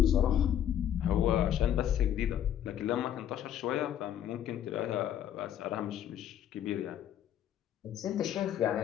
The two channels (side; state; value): right; quieter; 10.4 dB